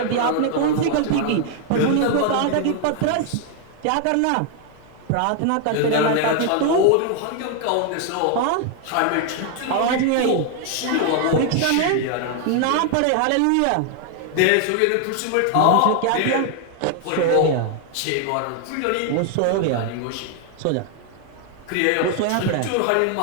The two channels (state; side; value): different; both; correlation 0.00